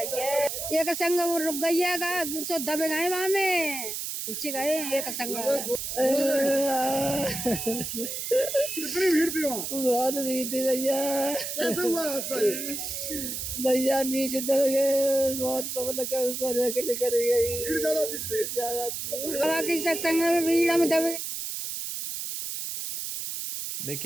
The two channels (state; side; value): noise; right; hiss, 5 dB below the sound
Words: एक संग वो रुक गई है, दूसरे दबे गए वहां में, पीछे गए एक संग। कितनी भीड़ थी वहाँ? बहुत भीड़ थी भैया। कैसे हुआ हादसा ये? भैया नीचे दब गए, बहुत पवन का ऊपर निकल गई, भीड़ ज्यादा थी इसलिए। बाकी सत्संग में बीड़ा में दब गए।